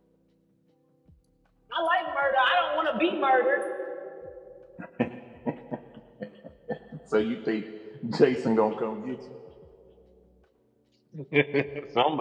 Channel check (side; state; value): both; identical; correlation 1.00